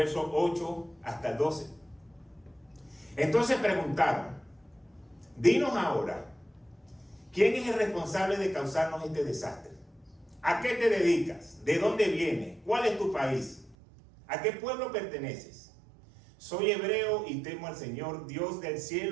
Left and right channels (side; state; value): left; drops out; at 13.8 s